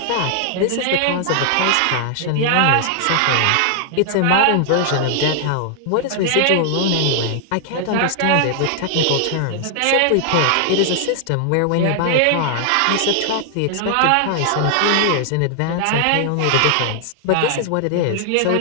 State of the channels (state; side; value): different; both; correlation -0.01